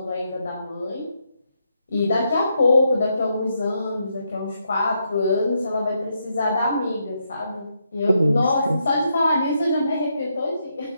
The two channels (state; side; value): inverted; both; correlation -0.80